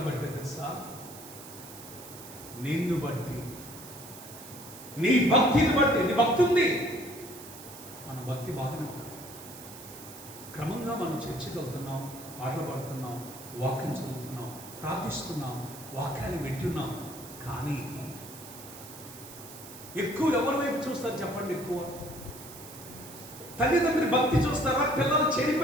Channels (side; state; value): right; noise; hiss, 15 dB below the sound